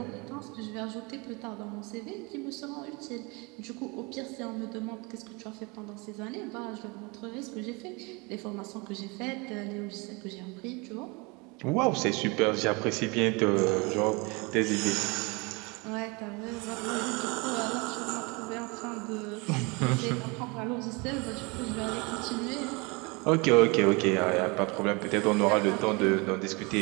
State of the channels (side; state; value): left; quieter; 28.1 dB